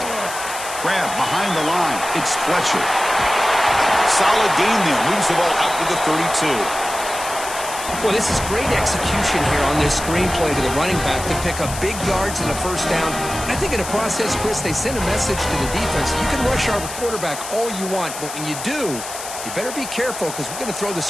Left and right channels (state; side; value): noise; left; hiss, 9 dB below the sound